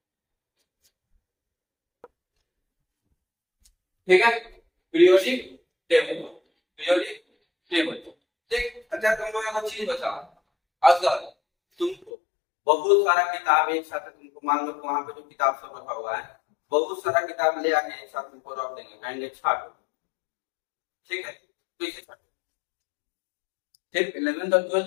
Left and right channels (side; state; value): right; drops out; at 12.1 s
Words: ठीक है, पीरियोडिक टेबल। Periodic table. ठीक, अच्छा तुम लोग एक चीज बताओ, अगर तुमको बहुत सारा किताब एक साथ, तुमको मान लो वहां पे जो किताब सब रखा हुआ है, बहुत सारा किताब ले आके एक साथ तुमको रख देंगे, कहेंगे छाटो। ठीक है, तो इसे छाटो। फिर 11th और